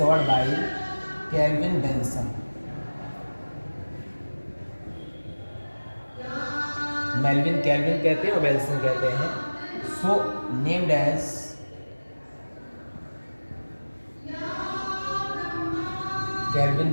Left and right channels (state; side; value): inverted; both; correlation -1.00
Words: by Calvin Benson. Melvin Calvin कहते हैं और बेंसन कहते हैं। So named as Calvin